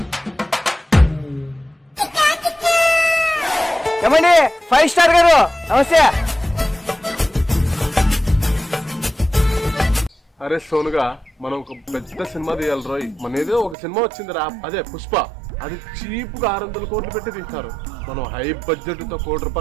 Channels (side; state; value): left; drops out; at 13.8 s